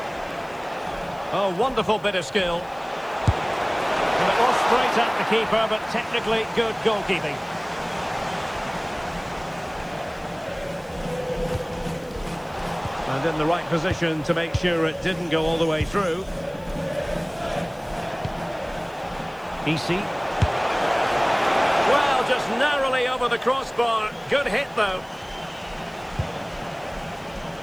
Oh, wonderful bit of skill. And it was straight at the keeper, but technically good goalkeeping. And in the right position to make sure it didn't go all the way through. Easy. Well, just narrowly over the crossbar. Good hit, though.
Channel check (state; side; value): noise; left; hiss, 28 dB below the sound